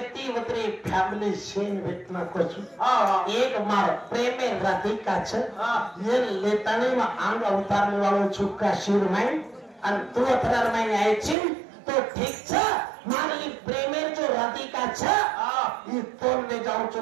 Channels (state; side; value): drops out; left; at 11.4 s